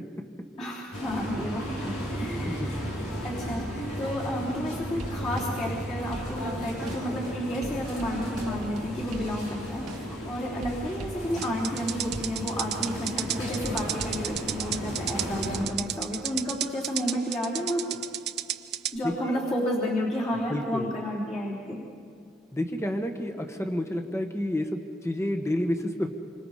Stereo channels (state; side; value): normal; both; correlation 0.70